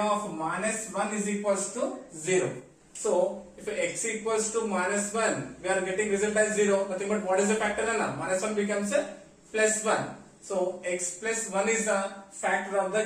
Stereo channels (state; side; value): identical; both; correlation 1.00